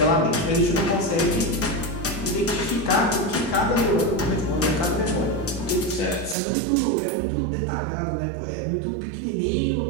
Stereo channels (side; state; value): left; drops out; at 6.4 s